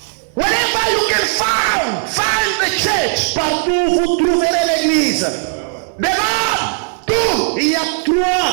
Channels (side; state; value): left; silent; 67 dB below the other